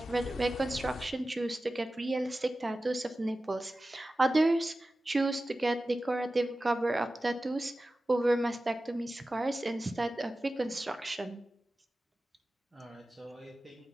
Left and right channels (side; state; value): both; normal; correlation 0.95